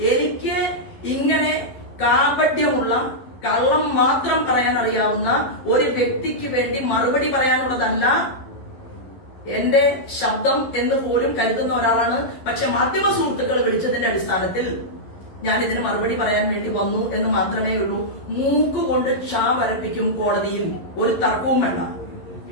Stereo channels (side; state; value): right; late; 11 ms